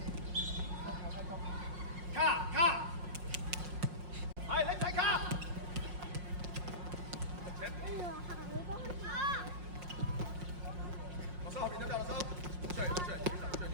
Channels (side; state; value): left; late; 5.6 ms